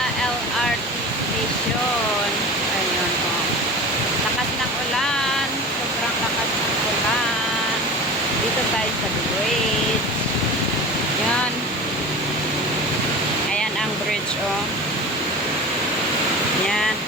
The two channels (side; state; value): both; normal; correlation 0.34